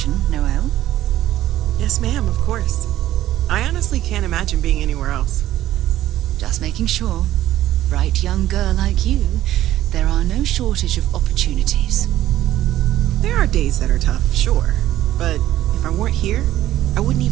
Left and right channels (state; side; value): quieter; left; 13.7 dB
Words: Noelle? Yes, ma'am, of course. I honestly can't imagine being anywhere else. Just making sure. Bright young girl like you, there are no shortage of opportunities. There are days that are tough, sure. But if I weren't here, I wouldn't